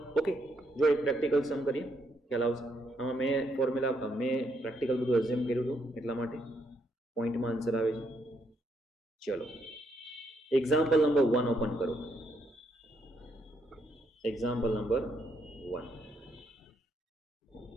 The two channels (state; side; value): normal; both; correlation 0.75